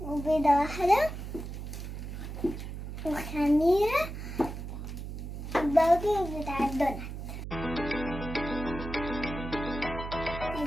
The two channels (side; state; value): right; noise; hum, 8 dB below the sound